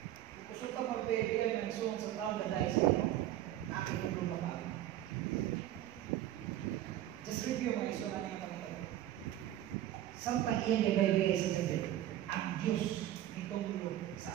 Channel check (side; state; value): left; quieter; 12.9 dB